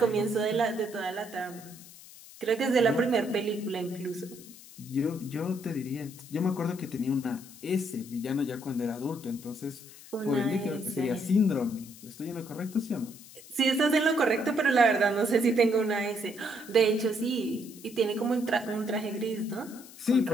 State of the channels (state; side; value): noise; left; hiss, 19 dB below the sound